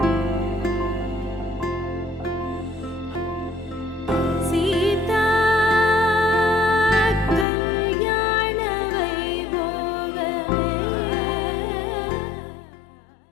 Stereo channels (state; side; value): drops out; right; at 7.5 s